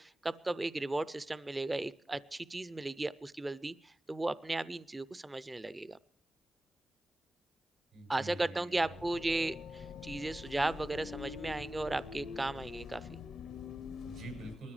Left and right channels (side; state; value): both; normal; correlation 0.95